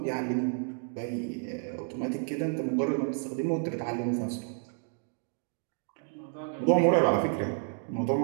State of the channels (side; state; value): left; silent; 57 dB below the other